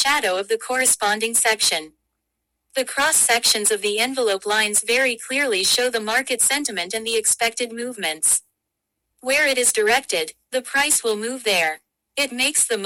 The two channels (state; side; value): identical; both; correlation 1.00